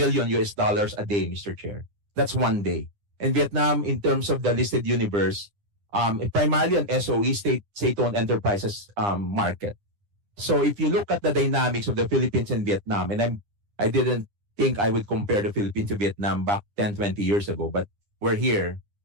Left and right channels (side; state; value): left; late; 9.9 ms